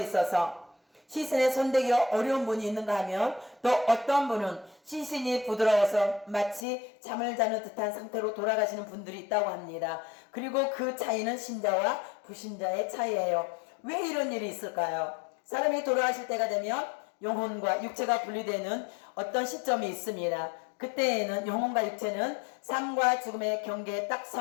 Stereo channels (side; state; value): right; drops out; at 6.7 s